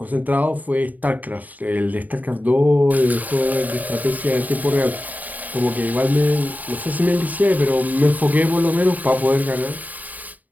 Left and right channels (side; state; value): left; late; 0.078 ms